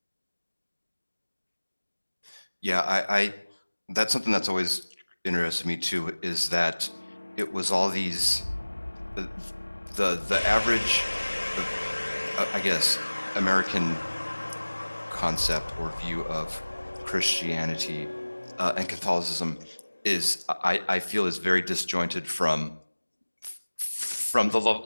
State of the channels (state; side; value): inverted; both; correlation -1.00